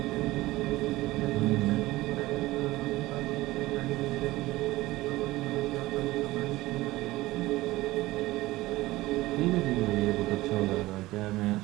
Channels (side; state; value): left; quieter; 18.5 dB